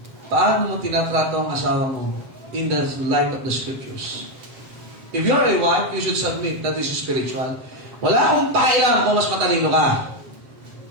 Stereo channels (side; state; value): left; late; 7.6 ms